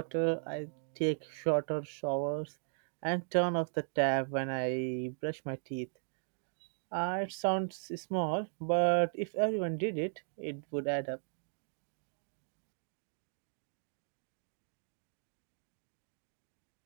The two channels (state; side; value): silent; left; digital silence